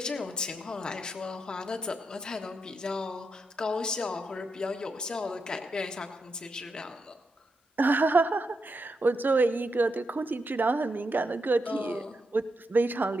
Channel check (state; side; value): normal; both; correlation 0.84